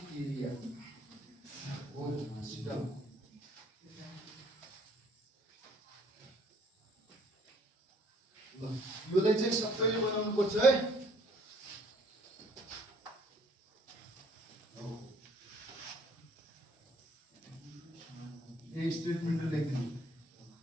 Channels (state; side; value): normal; both; correlation 0.60